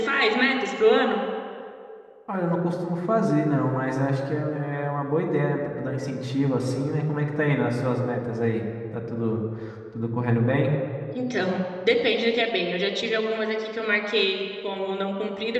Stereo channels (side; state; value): both; identical; correlation 1.00